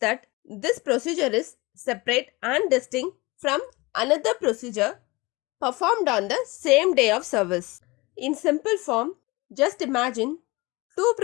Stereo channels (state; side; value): quieter; right; 23.5 dB